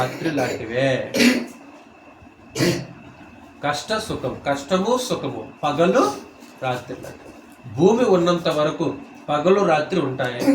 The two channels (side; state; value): both; identical; correlation 1.00